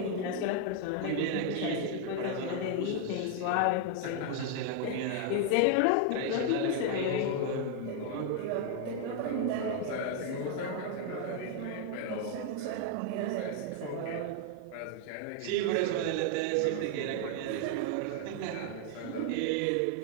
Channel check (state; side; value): different; both; correlation 0.00